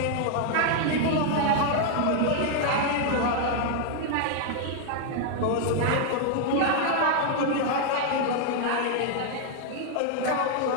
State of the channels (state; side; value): different; both; correlation 0.00